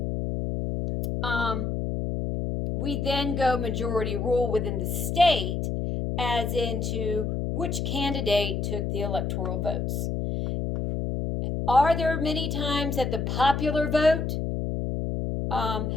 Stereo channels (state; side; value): noise; left; hum, 1 dB below the sound